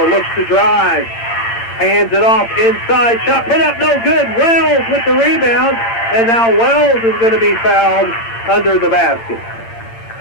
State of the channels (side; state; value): right; late; 8.8 ms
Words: Looks to drive. Hands it off inside. Shot put up, no good. Wells with the rebound. And now Wells is going to be fouled under the basket.